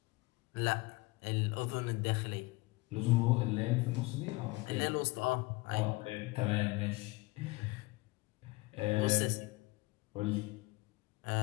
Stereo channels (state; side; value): quieter; right; 23.3 dB